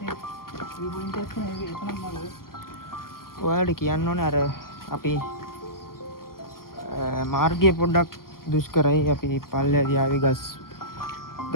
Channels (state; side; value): late; right; 0.92 ms